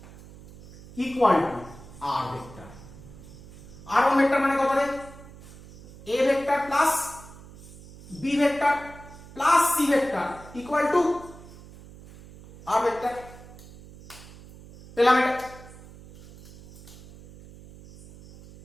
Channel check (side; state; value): right; noise; hum, 18 dB below the sound